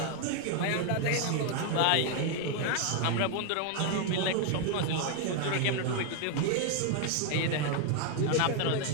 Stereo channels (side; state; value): both; different; correlation 0.00